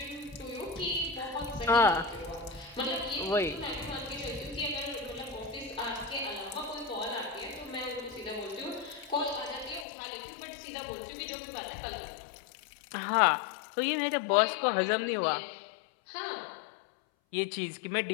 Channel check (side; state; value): right; drops out; at 9.9 s